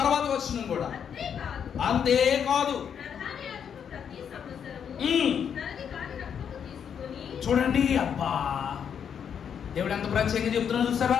తర్వాత వచ్చిన కూడా అంతేకాదు. చూడండి, అబ్బా దేవుడు ఎంత ప్రత్యేకంగా చెప్తున్నా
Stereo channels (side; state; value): right; quieter; 7.8 dB